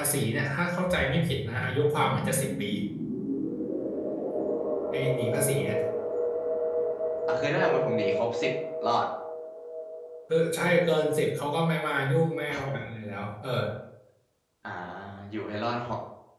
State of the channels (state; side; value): identical; both; correlation 1.00